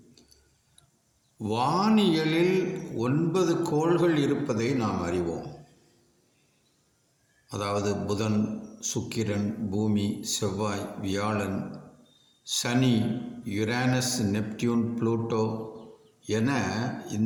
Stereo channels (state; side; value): identical; both; correlation 1.00